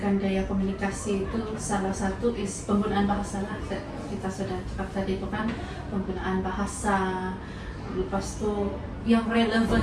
gaya komunikasi itu salah satu is penggunaan bahasa lah. Kita sudah cakap tadi itu kan, penggunaan bahasa, lepas itu yang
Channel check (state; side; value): identical; both; correlation 1.00